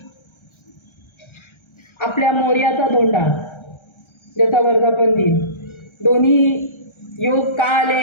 आपल्या मोर्याचा धोंडा ज्याचा वर्धापन दिन दोन्ही योग का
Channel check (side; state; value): right; late; 1.3 ms